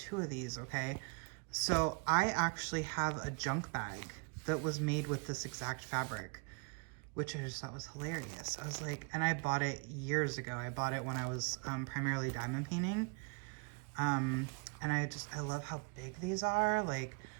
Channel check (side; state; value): left; quieter; 33.2 dB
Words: of these, okay? So I actually have a junk bag that was made with this exact fabric, which I just thought was hilarious. I was like, and I bought it years ago. I bought it when I was primarily diamond painting. And I love how big these are. Like,